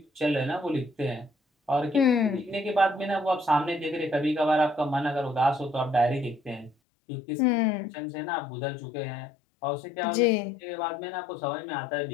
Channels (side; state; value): right; drops out; at 6.8 s